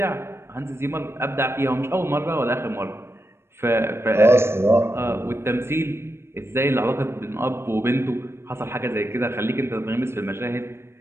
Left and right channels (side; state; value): left; late; 0.12 ms